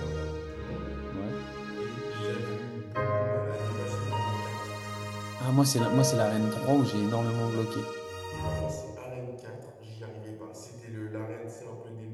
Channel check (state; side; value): identical; both; correlation 1.00